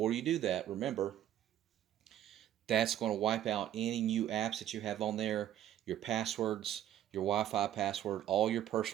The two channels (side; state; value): left; quieter; 11.7 dB